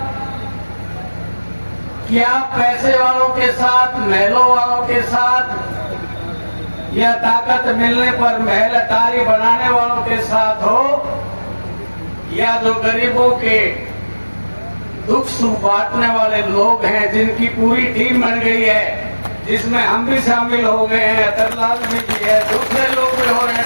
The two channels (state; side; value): inverted; both; correlation -1.00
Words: कि आप पैसे वालों के साथ, महलों वालों के साथ या ताकत मिलने पर महल अटारी बनाने वालों के साथ हो, या जो गरीबों के दुख सुख बांटने वाले लोग हैं जिनकी पूरी टीम बन गई है, जिसमें हम भी शामिल हो गए हैं, अतरलाल भी है, दूसरे लोग भी हो रहे